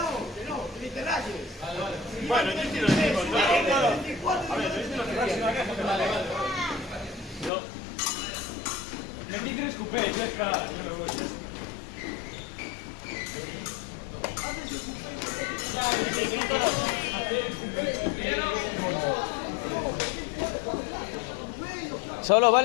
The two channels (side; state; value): right; drops out; at 7.5 s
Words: ni te rayes. Bueno, yo estoy los mismos, ¿no? A ver, yo estoy los mismos. No. Metí 3 cupés, ya está. Yo me voy. Solo